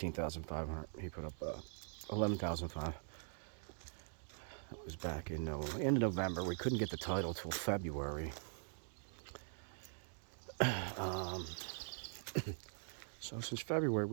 He put up 11,500. That was back in end of November. We couldn't get the title till February. So since February,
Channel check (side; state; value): left; silent; digital silence